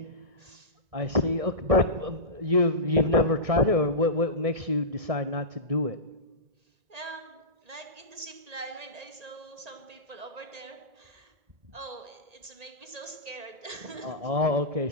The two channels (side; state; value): left; late; 1.8 ms